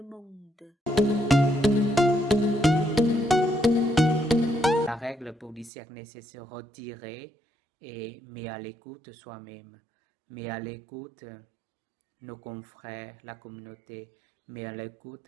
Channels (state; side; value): drops out; left; at 5.7 s